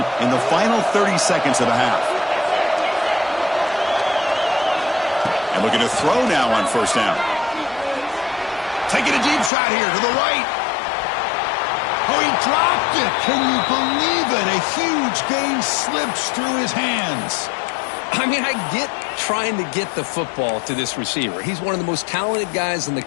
in the final 30 seconds of the half? And looking to throw now on first down. Taking a deep shot here to the right. Oh, he dropped it. Can you believe it? A huge gain slips through his hands. I mean, I get trying to get the football to this receiver. He's one of the most talented guys in the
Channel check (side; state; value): right; drops out; at 9.5 s